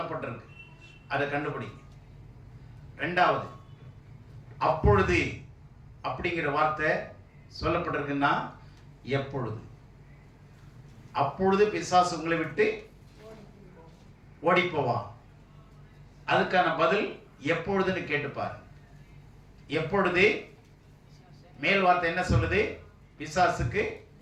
அதை கண்டுபிடிங்க. 2வது, அப்பொழுது அப்படிங்கிற வார்த்தை சொல்லப்பட்டிருக்குன்னா எப்பொழுது. அப்பொழுது பிசாசு உங்களை விட்டு ஓடி போவான். அதுக்கான பதில் எப்பொழுதுன்னு கேட்டுப்பாரு. எப்பொழுது மேல் வார்த்தை என்ன சொல்லுது? பிசாசுக்கு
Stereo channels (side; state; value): both; identical; correlation 1.00